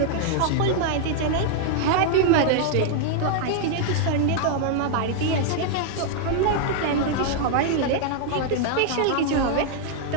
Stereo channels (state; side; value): different; both; correlation 0.00